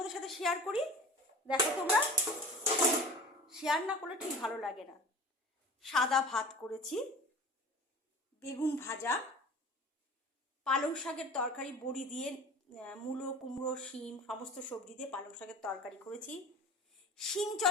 সাথে শেয়ার করি। দেখো, তোমরা শেয়ার না করলে ঠিক ভালো লাগে না। সাদা ভাত করেছি, বেগুন ভাজা, পালং শাকের তরকারি বড়ি দিয়ে, মূলো কুমড়ো শিম সমস্ত সবজি দিয়ে পালং শাকের তরকারি করেছি। শিম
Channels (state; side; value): normal; both; correlation 0.39